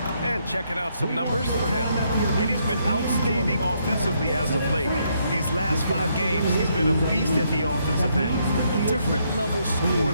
And checking out some numbers for him. And he's been outstanding offensively as of late. These last 5 games, he's been a beast at the offensive end. A different level score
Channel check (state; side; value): inverted; both; correlation -0.74